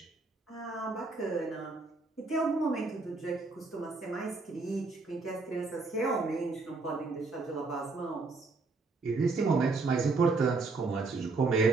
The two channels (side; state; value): left; quieter; 3.8 dB